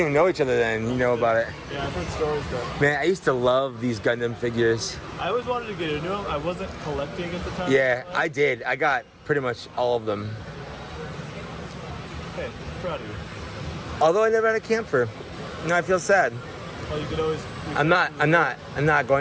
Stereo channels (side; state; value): both; identical; correlation 1.00